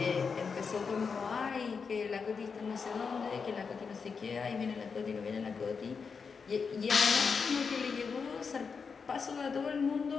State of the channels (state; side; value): quieter; right; 5.5 dB